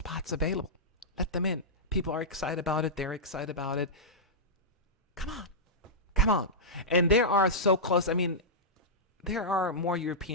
available. Let them in. People are excited about it. They're excited about it. Come on. Come on. And they are so close. I mean, there are more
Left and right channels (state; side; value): normal; both; correlation -0.12